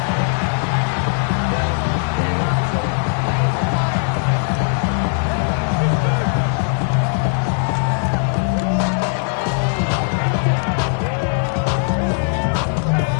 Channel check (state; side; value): silent; right; 56 dB below the other